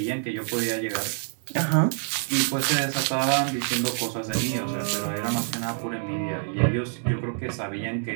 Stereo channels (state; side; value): silent; left; 61 dB below the other